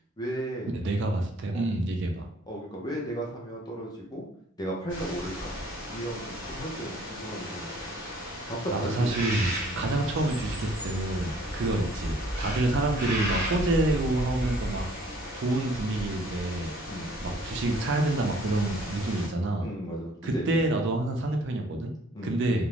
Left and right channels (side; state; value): both; normal; correlation 0.58